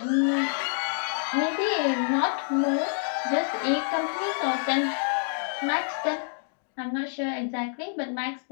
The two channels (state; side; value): silent; right; 60 dB below the other